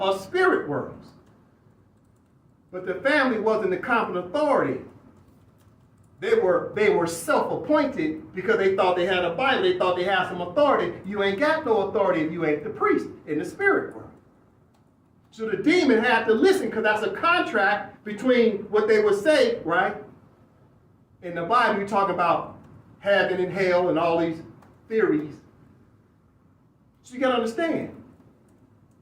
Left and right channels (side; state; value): both; identical; correlation 1.00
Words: us spirit worlds. But the family wasn't the competent authority. They were self-appointed because they thought they had a Bible. They thought they had some authority. You ain't got no authority if you ain't the priest in the spirit world. So the demon had to listen because that's a contract between what they would say, right? In the Bible, you talk about heaven and hell and all these theories. So you got to understand.